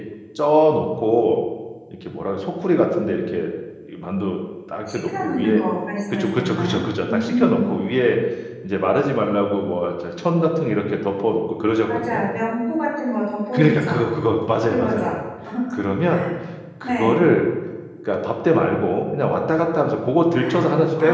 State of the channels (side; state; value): both; identical; correlation 1.00